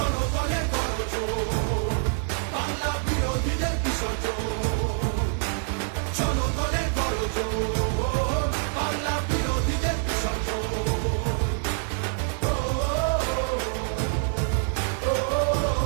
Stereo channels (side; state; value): left; silent; 61 dB below the other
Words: গর্জন, বাংলা বিরোধীদের বিসর্জন। জনগণের গর্জন, বাংলা বিরোধীদের বিসর্জন।